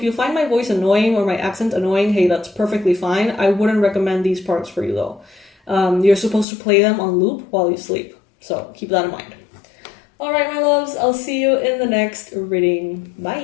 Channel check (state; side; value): drops out; right; at 6.5 s